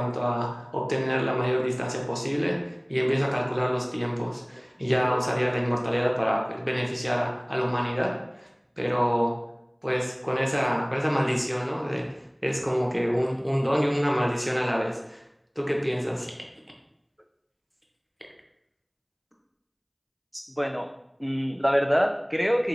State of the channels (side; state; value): both; identical; correlation 1.00